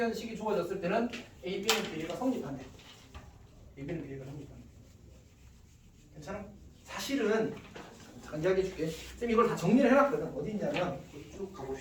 식이 주어졌을 때는 A, B는 비례가 성립한대. A, B는 비례가 성립한대. 괜찮아? 사실은 잠깐 이야기해 줄게. 쌤 이걸 다 정리를 해놨거든. 어디 있냐면 쭉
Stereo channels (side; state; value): both; identical; correlation 1.00